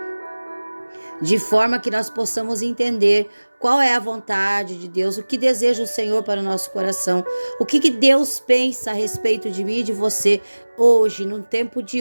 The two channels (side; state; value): both; inverted; correlation -1.00